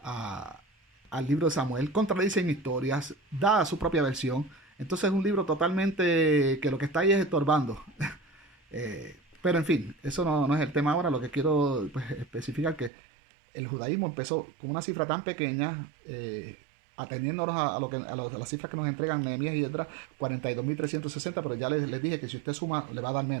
al libro de Samuel, contradicen historias, da su propia versión. Entonces es un libro totalmente que lo que está ahí es estorbando. Pero en fin, eso no es el tema ahora. Lo que quiero, pues, especificar que el judaísmo empezó con una cifra tan pequeña, atendiéndonos a las cifras que nos entregan Nehemías y Esdras, 42.360, pero ya les dije que si usted suma le va a dar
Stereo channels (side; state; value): left; drops out; at 12.9 s